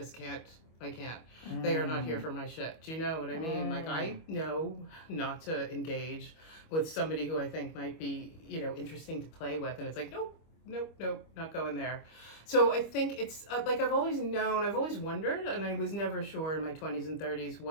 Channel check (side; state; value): right; late; 25 ms